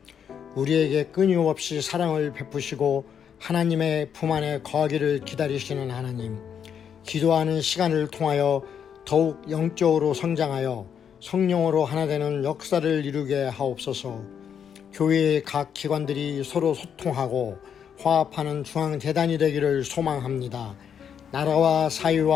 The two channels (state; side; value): quieter; right; 8.0 dB